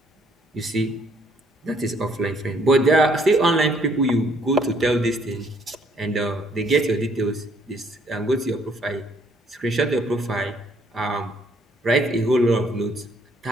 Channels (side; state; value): both; normal; correlation 0.66